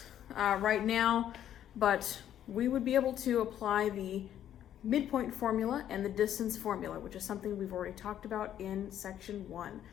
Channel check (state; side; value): quieter; right; 10.8 dB